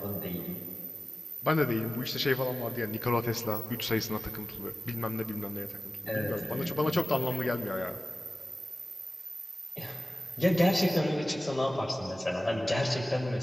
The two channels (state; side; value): normal; both; correlation 0.96